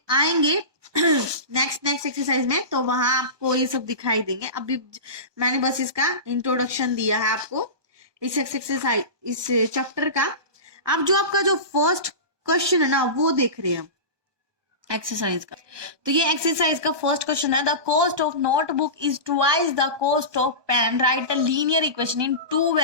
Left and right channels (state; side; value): late; left; 1.2 ms